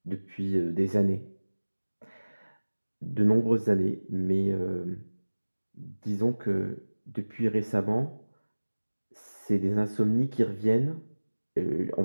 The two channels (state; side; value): inverted; both; correlation -1.00